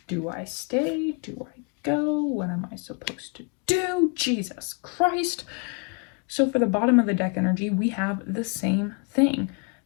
do I stay? Do I go? What am I supposed to do? Jesus Christ. So for the bottom of the deck energy, we have the same thing.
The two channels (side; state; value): right; quieter; 36.4 dB